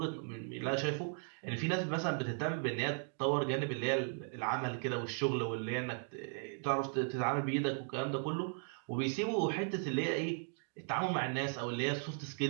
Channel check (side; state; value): left; silent; 53 dB below the other